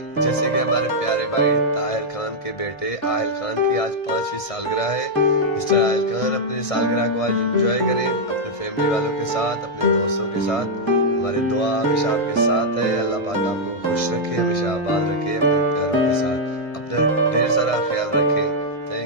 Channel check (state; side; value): late; right; 1.6 ms